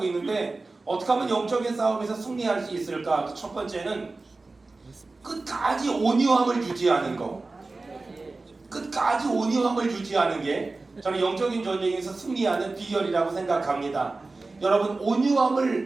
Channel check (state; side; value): quieter; left; 3.5 dB